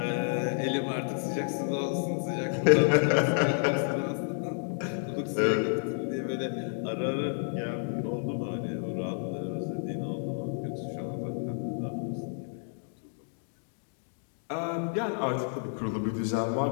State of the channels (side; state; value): right; silent; digital silence